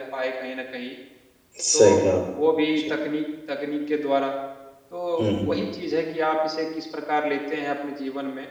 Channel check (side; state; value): both; identical; correlation 1.00